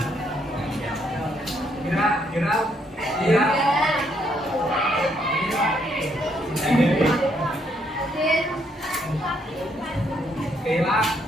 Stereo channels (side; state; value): both; normal; correlation 0.72